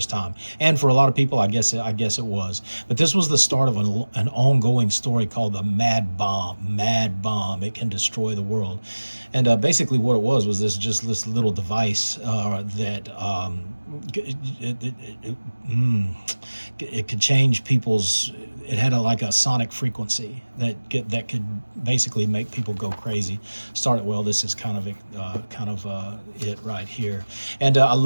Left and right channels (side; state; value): both; inverted; correlation -1.00